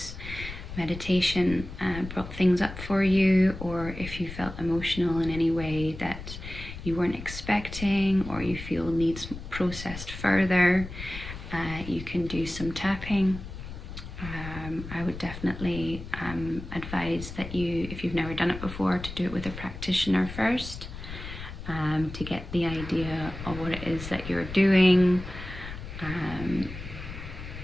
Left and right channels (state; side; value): noise; left; rumble, 10 dB below the sound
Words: meditation brought things up for you, or if you felt emotional in any way that you weren't expecting or you feel needs processed further, you can do some tapping. I would definitely advise that you, if you've never done it before, to do it with a practitioner first, to get the idea of what it is that you're doing.